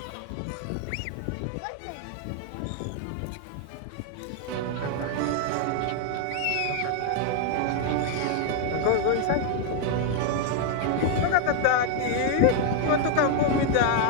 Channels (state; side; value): different; both; correlation 0.00